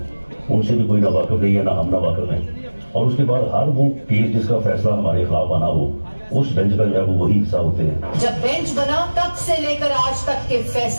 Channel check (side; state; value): both; inverted; correlation -1.00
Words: उनसे भी कोई ना वाकिफ नहीं है, ना हम ना वाकिफ हैं। और उसके बाद हर वो केस जिसका फैसला हमारे खिलाफ आना हो, उस बेंच का जो है वो वही हिस्सा होते हैं। जब बेंच बना तब से लेकर आज तक के